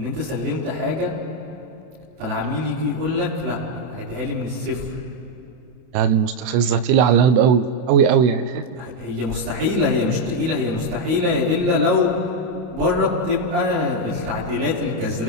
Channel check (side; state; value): left; late; 32 ms